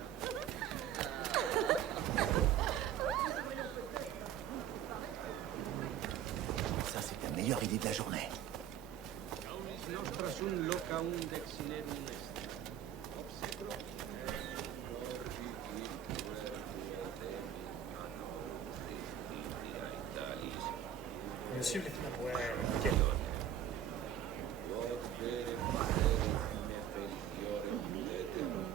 Ça, c'est la meilleure idée de la journée. Me suivre les fenêtres. Ouais, nickel.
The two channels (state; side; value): quieter; left; 9.7 dB